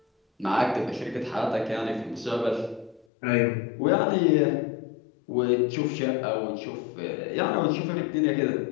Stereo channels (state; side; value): drops out; right; at 3.1 s